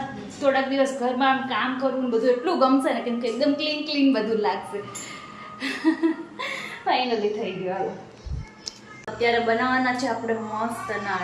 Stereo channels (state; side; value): identical; both; correlation 1.00